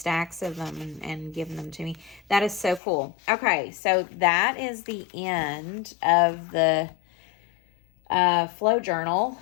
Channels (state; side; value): drops out; right; at 2.8 s